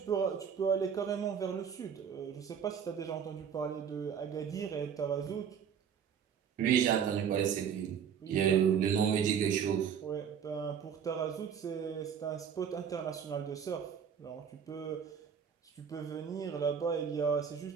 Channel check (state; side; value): quieter; left; 7.7 dB